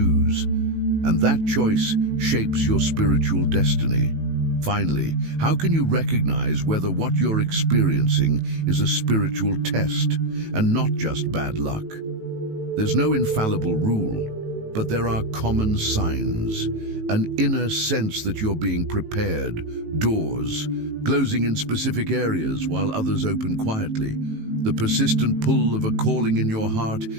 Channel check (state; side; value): late; left; 18 ms